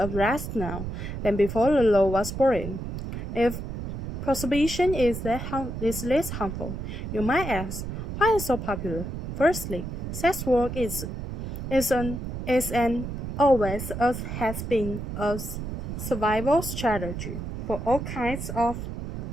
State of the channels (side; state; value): right; noise; rumble, 6 dB below the sound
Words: now than before the law was brought. If prohibition is less harmful, you might ask, why is it so popular? Firstly, sex work is and always has been a survival strategy for all kinds of